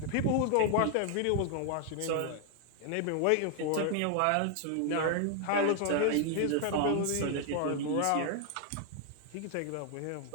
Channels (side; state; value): both; different; correlation 0.00